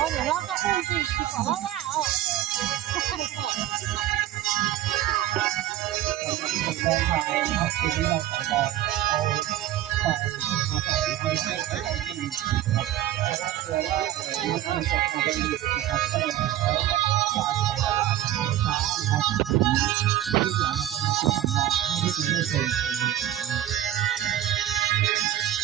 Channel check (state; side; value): quieter; left; 12.9 dB